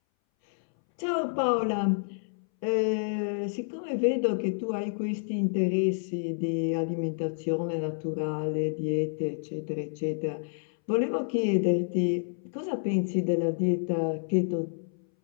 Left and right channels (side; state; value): right; silent; 59 dB below the other